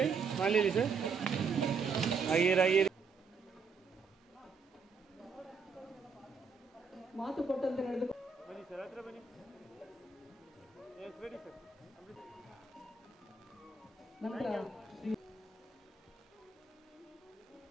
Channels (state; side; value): quieter; left; 4.8 dB